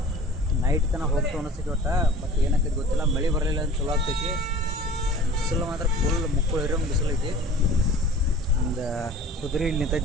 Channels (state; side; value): normal; both; correlation 0.43